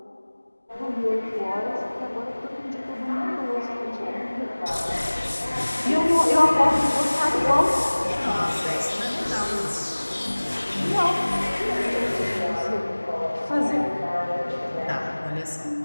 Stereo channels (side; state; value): both; inverted; correlation -1.00